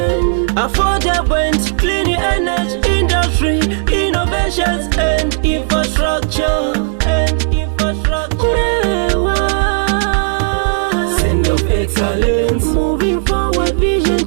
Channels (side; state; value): left; silent; digital silence